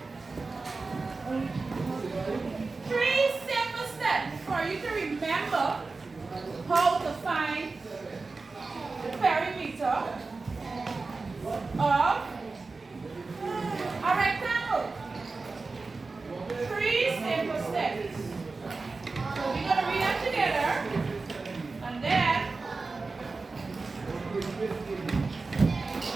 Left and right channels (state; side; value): quieter; left; 3.9 dB